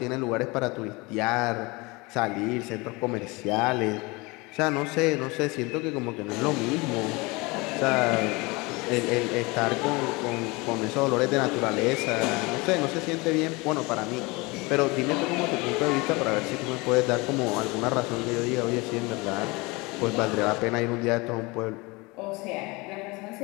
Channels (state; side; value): quieter; right; 25.2 dB